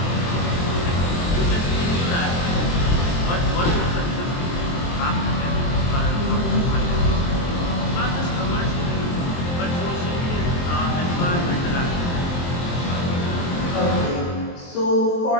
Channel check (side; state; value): right; late; 23 ms